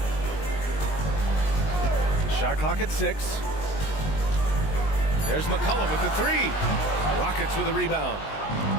Shot clock at 6. There's McCollum with the 3. Rockets with a rebound.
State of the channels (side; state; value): right; late; 20 ms